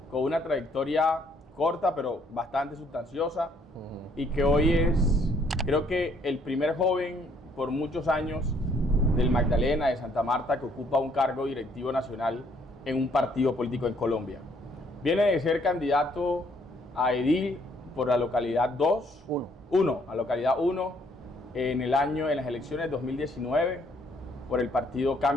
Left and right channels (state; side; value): normal; both; correlation 0.66